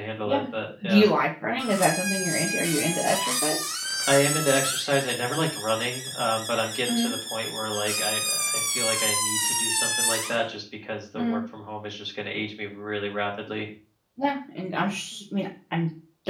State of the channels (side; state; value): both; identical; correlation 1.00